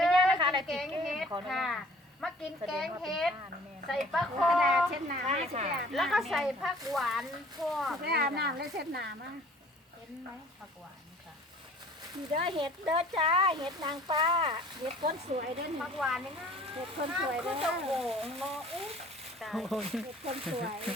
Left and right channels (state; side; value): normal; both; correlation 0.51